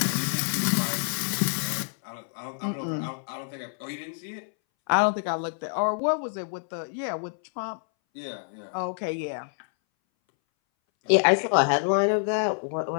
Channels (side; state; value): right; silent; 60 dB below the other